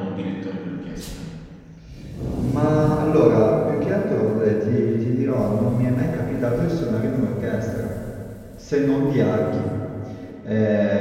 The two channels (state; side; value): identical; both; correlation 1.00